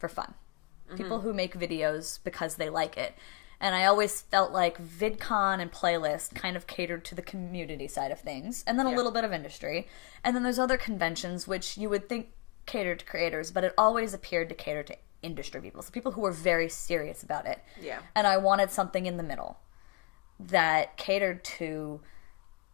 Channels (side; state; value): right; quieter; 32.0 dB